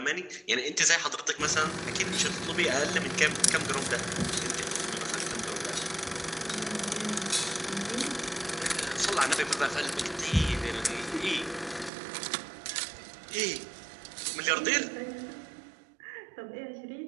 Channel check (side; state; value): left; drops out; at 11.9 s